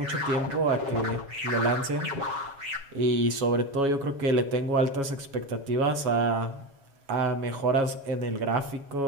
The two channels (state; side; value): late; left; 7.2 ms